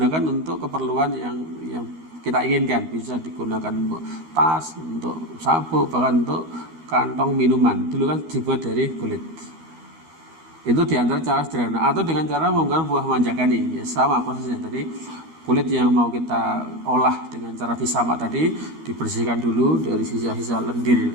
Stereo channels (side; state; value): left; late; 13 ms